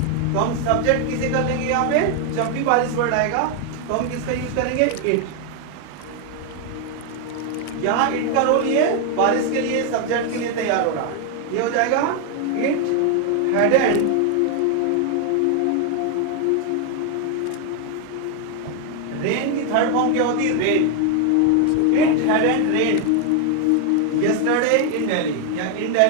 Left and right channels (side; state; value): both; different; correlation 0.01